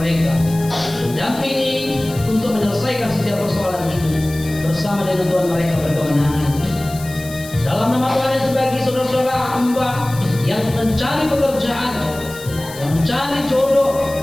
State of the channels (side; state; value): left; noise; hiss, 16 dB below the sound